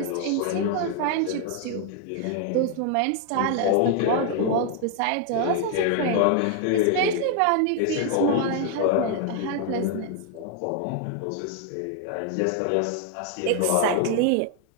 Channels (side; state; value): both; different; correlation 0.00